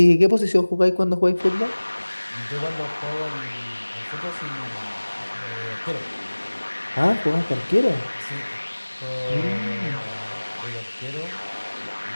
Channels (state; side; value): inverted; both; correlation -1.00